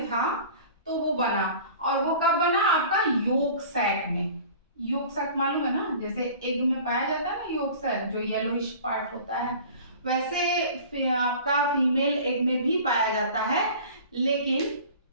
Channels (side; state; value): both; inverted; correlation -0.42